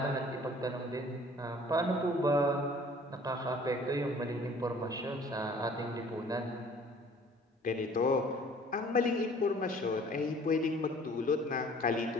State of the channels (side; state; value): both; normal; correlation 0.52